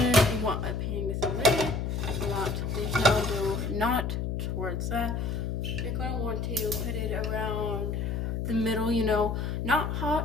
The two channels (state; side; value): noise; left; hum, 1 dB below the sound